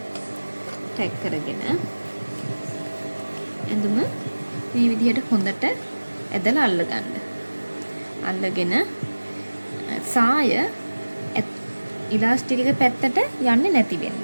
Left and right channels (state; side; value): inverted; both; correlation -1.00